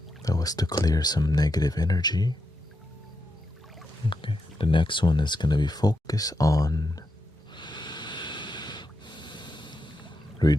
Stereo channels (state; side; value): normal; both; correlation 0.85